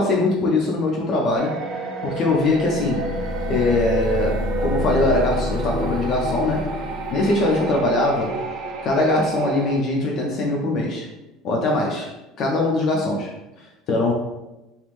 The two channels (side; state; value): both; normal; correlation 0.47